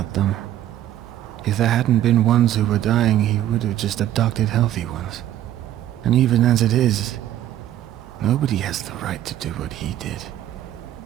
them. If there hadn't been ones who were dying, he would have just abducted healthy ones. And even as it is, nobody has the right to do what he did.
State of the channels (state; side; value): quieter; left; 12.3 dB